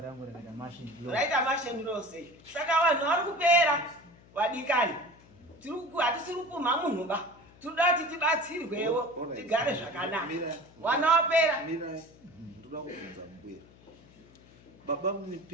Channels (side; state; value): left; noise; hum, 25 dB below the sound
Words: rangu rakaita machine law. Raita machine law sei. Saka vanhu vari kupera wadikani. Hatisiri kumha munhu ba. Tinoda kuti tibatsirwewo tigare zvakanaka. Wana wapera. Mirai. Ndoda kubvunza mbuya. Baba